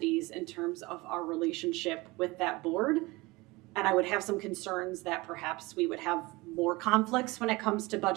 in terms of our relationship with that board. And I would have some concerns that perhaps we would have more conflicts when it comes to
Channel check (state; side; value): quieter; left; 22.6 dB